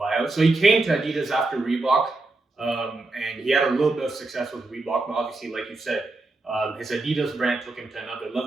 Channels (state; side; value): quieter; left; 3.2 dB